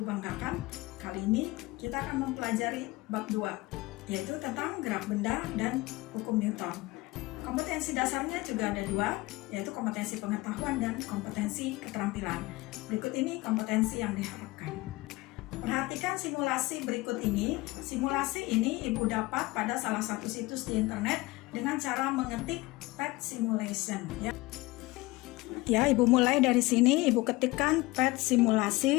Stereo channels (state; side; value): quieter; right; 21.0 dB